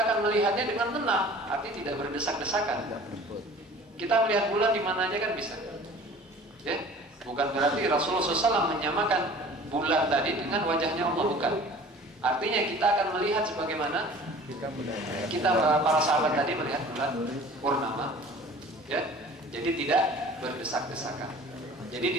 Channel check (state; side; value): normal; both; correlation 0.46